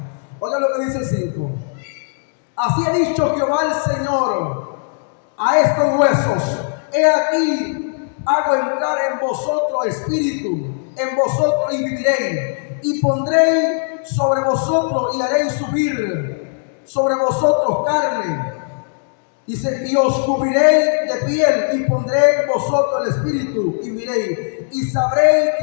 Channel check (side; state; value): right; silent; digital silence